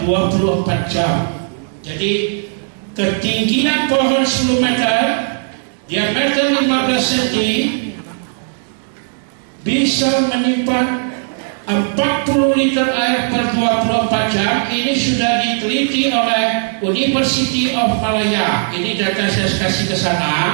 24 jam. Jadi ketinggian pohon 10 meter, diameter 15 cm, bisa menyimpan 40 liter air per 24 jam. Ini sudah diteliti oleh University of Malaya. Ini data saya kasih ke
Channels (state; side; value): silent; left; 62 dB below the other